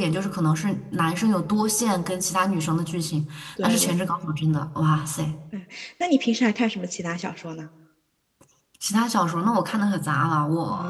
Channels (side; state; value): both; identical; correlation 1.00